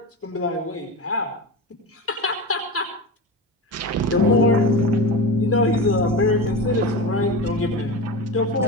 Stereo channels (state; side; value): normal; both; correlation 0.24